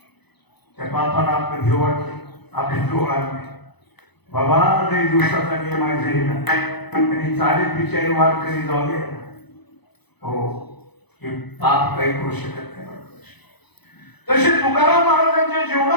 त्या पापाला आपलं भेव वाटते, आपले डोळ आले नाही. बाबा लई दिवसाचा नियम आहे जाईना आणि चालेल बिचारी वाद कधी जाऊ दे. हो हे पाप काही करू शकत नाही. तसे तुकाराम महाराजांच्या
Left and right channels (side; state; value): right; late; 0.99 ms